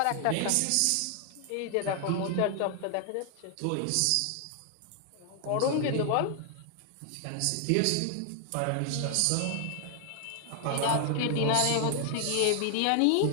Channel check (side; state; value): both; different; correlation 0.00